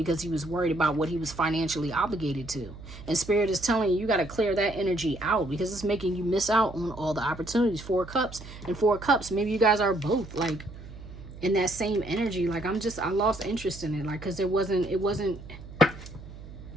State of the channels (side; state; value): right; noise; hum, 15 dB below the sound